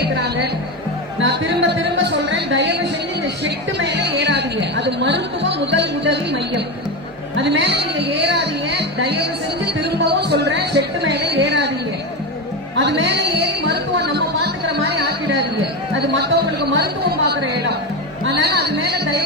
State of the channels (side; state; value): both; normal; correlation 0.17